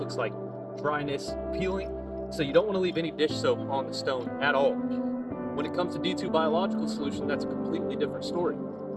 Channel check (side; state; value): both; identical; correlation 1.00